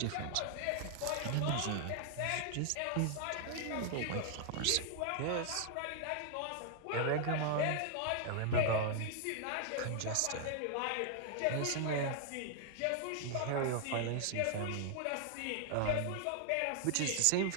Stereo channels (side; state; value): both; different; correlation -0.01